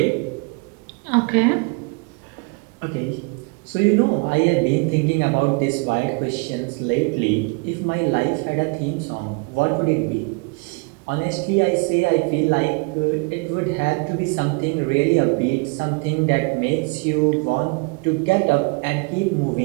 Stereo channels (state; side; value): quieter; left; 31.3 dB